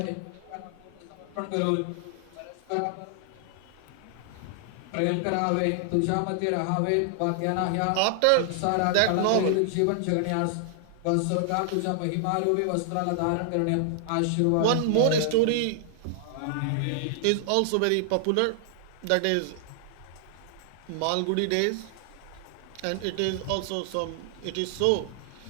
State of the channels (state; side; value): different; both; correlation 0.00